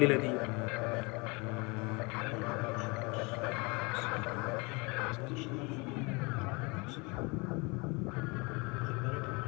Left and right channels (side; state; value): right; quieter; 27.8 dB